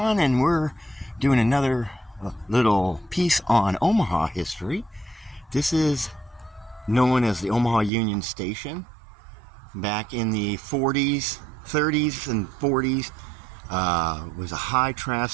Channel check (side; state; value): left; drops out; at 7.9 s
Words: and we're doing another little piece on Omaha history. This is known as the Omaha Union Station. Back in the 40s, 30s, and 40s, was a high